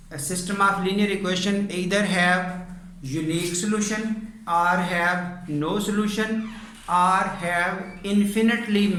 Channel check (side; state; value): both; identical; correlation 1.00